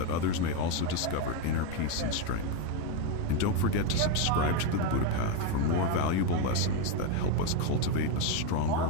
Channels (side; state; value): both; different; correlation 0.03